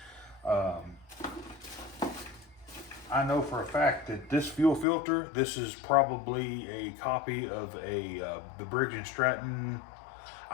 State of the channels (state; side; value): drops out; right; at 4.9 s